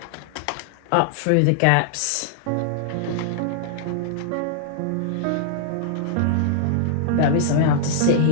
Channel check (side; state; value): both; different; correlation -0.01